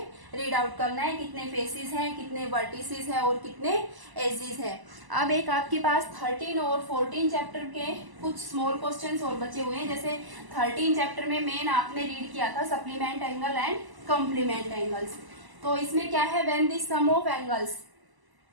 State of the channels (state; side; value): late; left; 1.0 ms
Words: रीड आउट करना है, कितने फेसेस हैं, कितने वर्टिसेस हैं और कितने एजेस हैं। अब एक आपके पास 13 और 14 चैप्टर के कुछ स्मॉल क्वेश्चंस और बचे हुए हैं। जैसे 13 चैप्टर में मेन आपने रीड किया था supplement angle and complement angles. तो इसमें क्या है, when the sum of angles